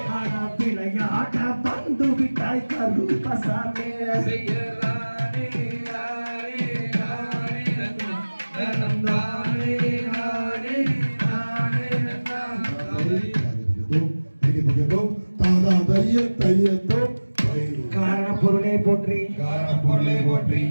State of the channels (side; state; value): both; inverted; correlation -1.00